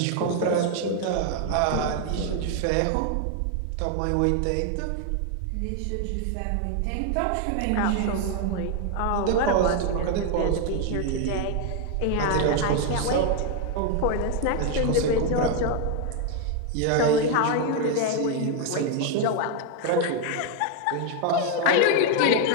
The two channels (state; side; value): different; both; correlation 0.01